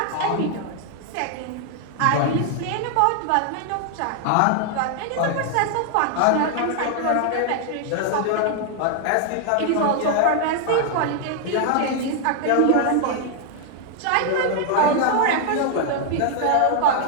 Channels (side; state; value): both; different; correlation 0.00